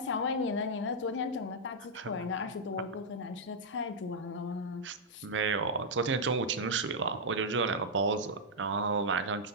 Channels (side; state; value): both; normal; correlation -0.07